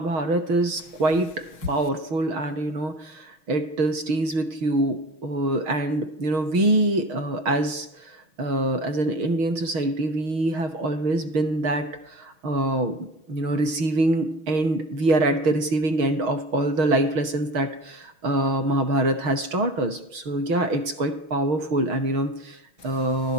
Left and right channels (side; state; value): left; late; 6.5 ms